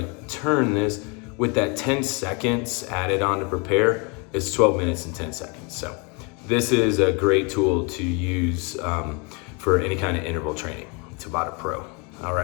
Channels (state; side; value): quieter; right; 31.6 dB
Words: turn this with that 10 seconds added on to prepare, it's 12 minutes and 10 seconds. So this is a great tool to use for any kind of interval training. Tabata Pro. All